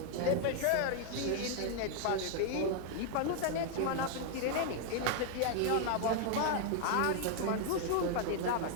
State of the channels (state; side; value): different; both; correlation 0.00